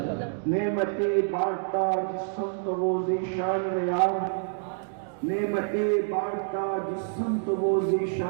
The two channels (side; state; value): left; silent; digital silence